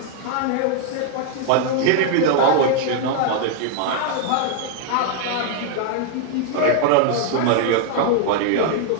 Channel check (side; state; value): both; different; correlation 0.00